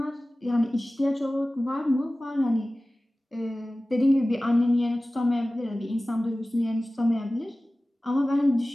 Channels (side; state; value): both; normal; correlation 0.97